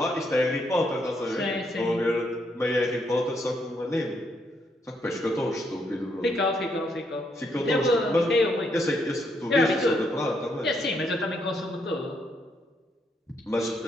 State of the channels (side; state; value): both; normal; correlation 0.75